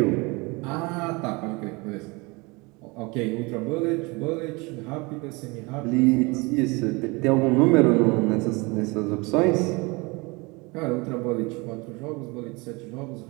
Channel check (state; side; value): quieter; left; 26.3 dB